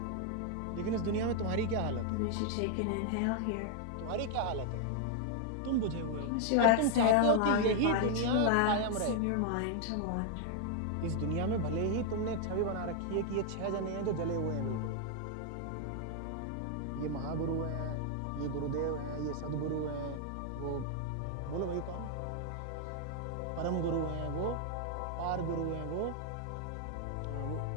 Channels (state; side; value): different; both; correlation 0.00